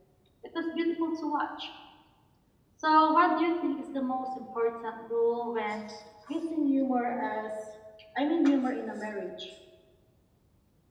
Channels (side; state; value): both; identical; correlation 1.00